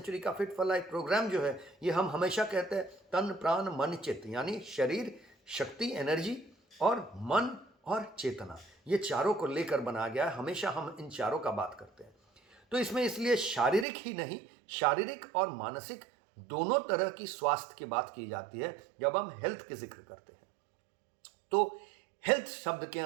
का फिट फॉर लाइफ प्रोग्राम जो है, ये हम हमेशा कहते हैं तन प्राण मन चित्त, यानी शरीर, शक्ति, एनर्जी और मन और चेतना, ये चारों को लेकर बनाया गया है। हमेशा हम इन चारों का बात करते हैं। तो इसमें इसलिए शारीरिक ही नहीं, शारीरिक और मानसिक दोनों तरह की स्वास्थ्य की बात की जाती है जब हम हेल्थ के जिक्र करते हैं। तो हेल्थ शब्द के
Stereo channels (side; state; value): left; drops out; at 13.9 s